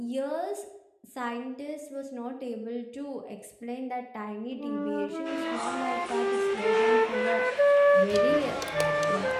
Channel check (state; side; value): identical; both; correlation 1.00